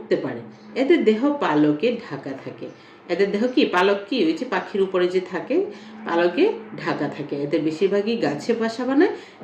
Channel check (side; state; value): both; identical; correlation 1.00